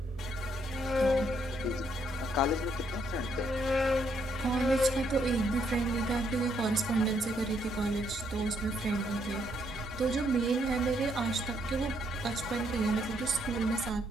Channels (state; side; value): normal; both; correlation 0.73